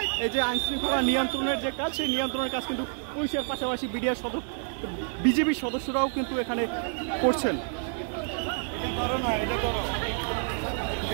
এই যে আইনশৃঙ্খলা নিয়ন্ত্রণের যে কাজ, সেই নিয়ন্ত্রণের কাজ কিন্তু পুলিশের পাশাপাশি বিজেপির সদস্যরাও কিন্তু এখানে করছেন।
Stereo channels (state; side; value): silent; left; 59 dB below the other